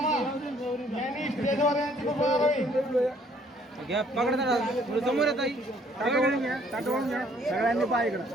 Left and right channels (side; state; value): both; normal; correlation 0.62